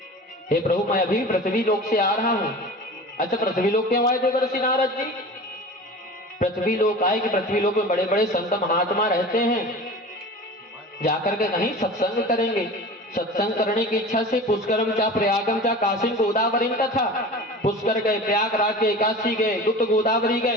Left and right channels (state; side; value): normal; both; correlation 0.36